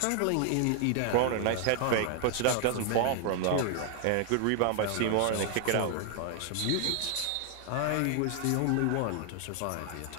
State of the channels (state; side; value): different; both; correlation 0.00